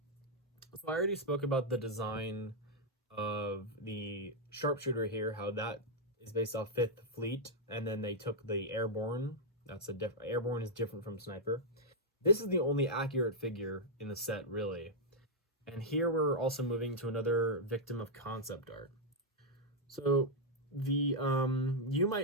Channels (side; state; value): both; normal; correlation -0.04